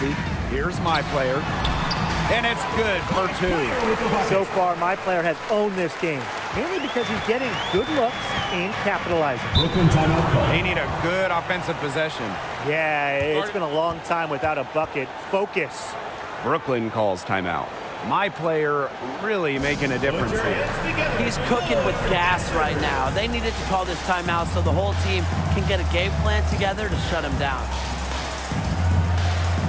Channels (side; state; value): both; identical; correlation 1.00